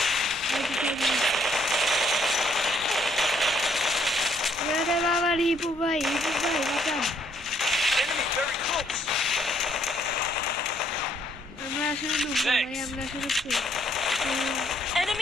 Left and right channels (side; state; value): left; noise; hum, 27 dB below the sound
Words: বাবার হিপু ভাই বাঁচান। আমরা আসলে ভাই, আমরা আসলে